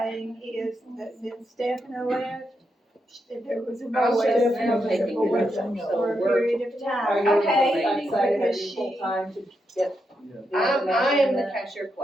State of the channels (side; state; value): both; normal; correlation 0.83